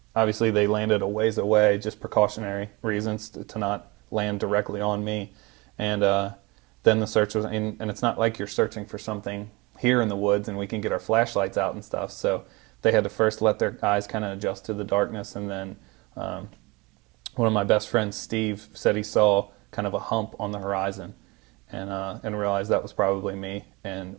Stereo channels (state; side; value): quieter; left; 24.7 dB